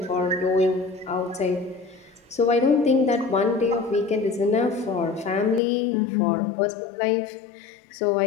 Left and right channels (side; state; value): right; drops out; at 5.6 s